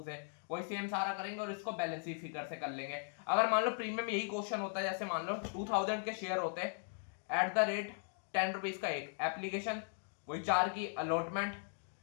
से, वही सेम सारा करेंगे और इसको बैलेंस फिगर से कर लेंगे। अगर मान लो प्रीमियम यही क्वेश्चन होता है, जैसे मान लो 2000 के शेयर होते हैं एट द रेट 10 रुपीज का एक, एप्लीकेशन वही 4 की, अलॉटमेंट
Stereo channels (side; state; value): right; silent; 52 dB below the other